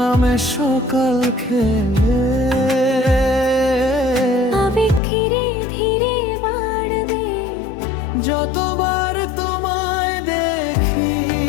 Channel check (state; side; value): drops out; right; at 5.0 s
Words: নামে সকাল খেলে। আবেগ ধীরে ধীরে বাড়বে যতবার তোমায় দেখি,